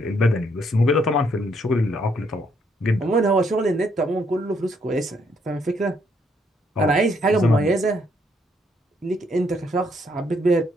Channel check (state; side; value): normal; both; correlation 0.71